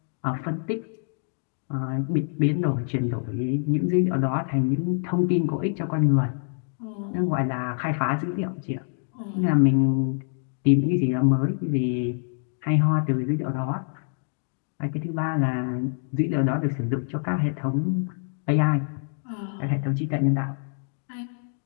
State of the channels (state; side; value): silent; right; 61 dB below the other